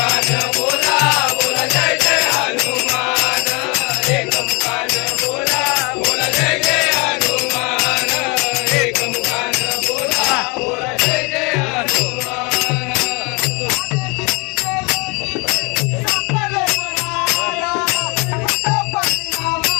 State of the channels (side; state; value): right; quieter; 28.7 dB